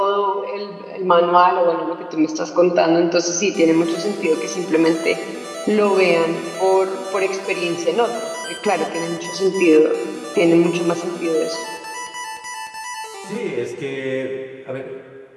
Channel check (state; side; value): identical; both; correlation 1.00